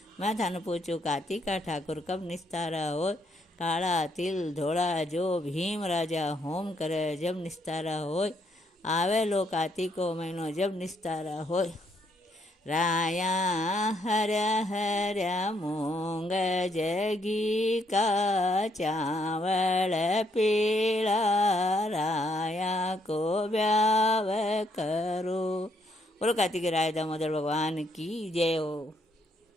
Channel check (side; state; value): both; normal; correlation 0.72